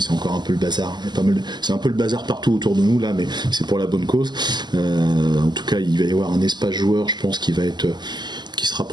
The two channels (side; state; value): left; late; 0.21 ms